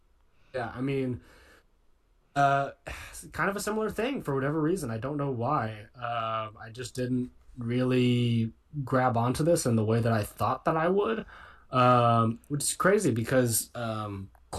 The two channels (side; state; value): both; identical; correlation 1.00